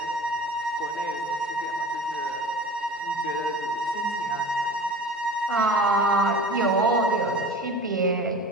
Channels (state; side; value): normal; both; correlation 0.38